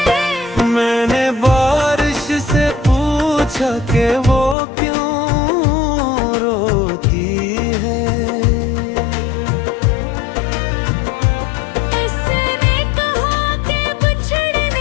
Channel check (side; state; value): right; drops out; at 4.5 s